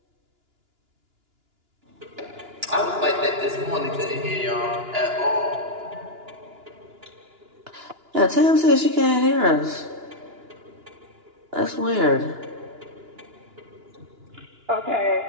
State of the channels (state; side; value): late; left; 2.9 ms